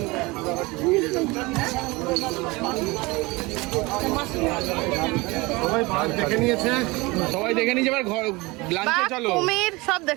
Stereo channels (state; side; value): quieter; left; 23.6 dB